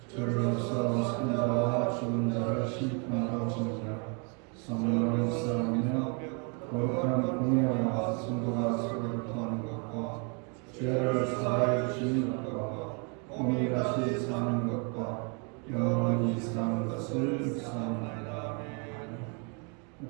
저로서 산자와 죽은 자를 심판하시니라. 성령을 쌓으며 거룩한 공예와 성도가 서로를 통하는 것과 죄를 사하여 주시는 것과 몸이 다시 사는 것과 영원히 사는 것을 묵상하나이다.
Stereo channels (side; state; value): left; quieter; 36.1 dB